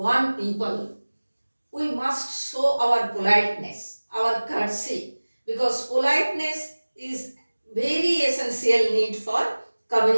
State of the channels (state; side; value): inverted; both; correlation -1.00